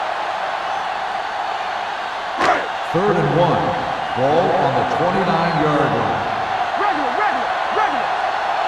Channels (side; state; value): both; identical; correlation 1.00